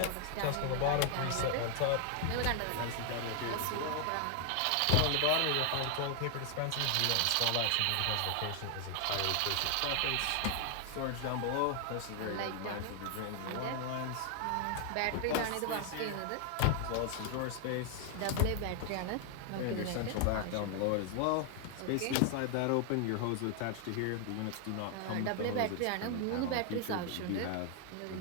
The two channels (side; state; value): both; different; correlation 0.00